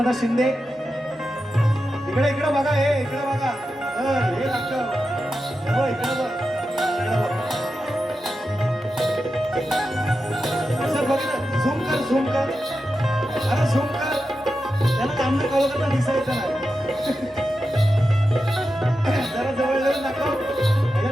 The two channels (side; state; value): both; normal; correlation 0.90